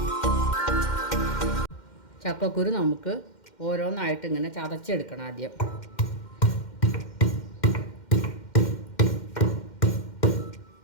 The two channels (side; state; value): right; late; 2.1 ms